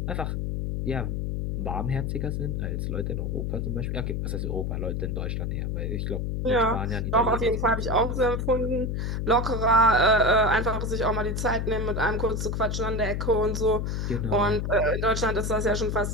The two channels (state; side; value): noise; left; hum, 1 dB below the sound